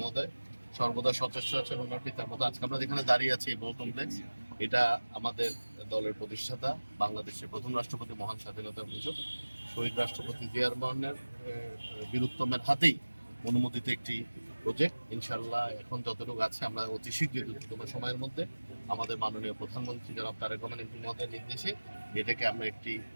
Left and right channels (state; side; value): inverted; both; correlation -1.00